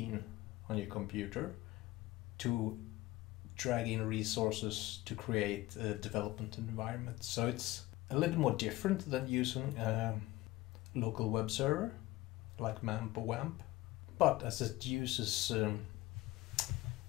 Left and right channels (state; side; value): quieter; right; 18.1 dB